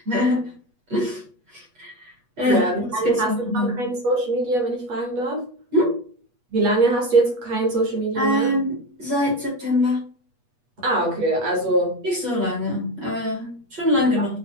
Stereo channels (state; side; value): late; left; 8.3 ms